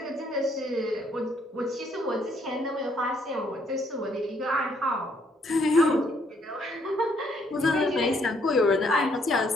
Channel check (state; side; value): normal; both; correlation 0.69